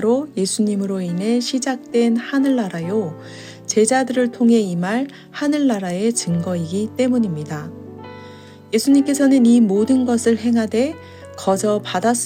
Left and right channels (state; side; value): identical; both; correlation 1.00